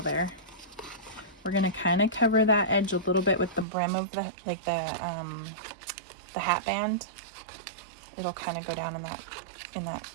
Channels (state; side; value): drops out; left; at 3.7 s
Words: there. We're going to kind of cover that edge a little bit with the brim of the, like the hat band. It'll kind of go down in that